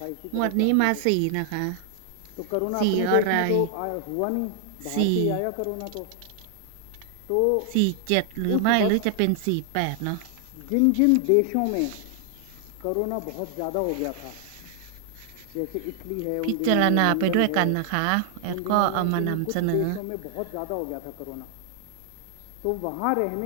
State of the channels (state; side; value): different; both; correlation 0.00